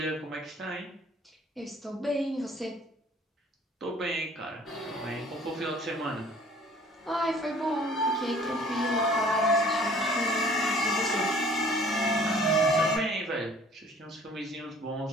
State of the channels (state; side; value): normal; both; correlation 0.53